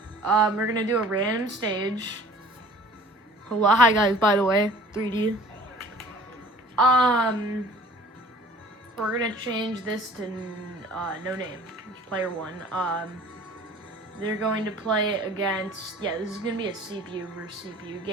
We're going to do a random stage. Hello. Hi, guys, by the way. 3D. We're gonna change this to no name. It's player 1. They're going to play against... Yeah, this is gonna be a CPU versus CPU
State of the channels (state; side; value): normal; both; correlation 0.48